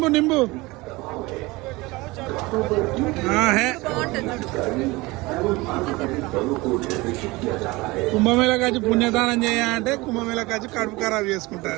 नींबू हाँ है। కుంభమేళకు వచ్చి పుణ్యదానం చేయాలంటే కుంభమేళకు వచ్చి కడుపు ఖరాబ్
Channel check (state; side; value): quieter; left; 22.3 dB